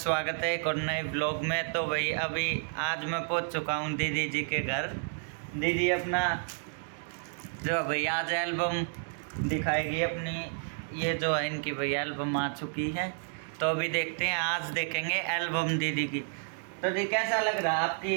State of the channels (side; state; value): left; silent; 57 dB below the other